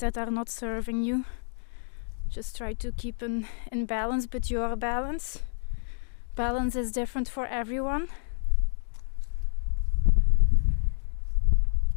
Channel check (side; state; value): right; silent; 59 dB below the other